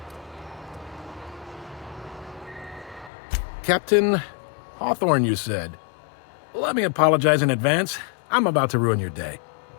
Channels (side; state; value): right; drops out; at 3.1 s